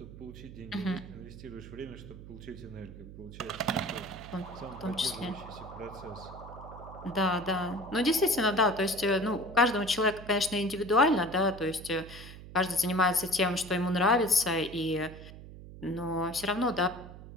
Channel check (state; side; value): noise; right; hum, 15 dB below the sound